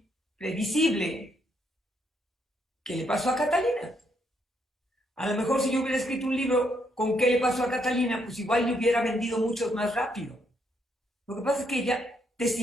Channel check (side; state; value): both; normal; correlation 0.74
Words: previsible, ¿qué le pasó a Catalina? A lo mejor si yo hubiera escrito un libro con qué le pasó a Catalina, pues igual le hubiera vendido mucho más rápido. Lo que pasa es que ella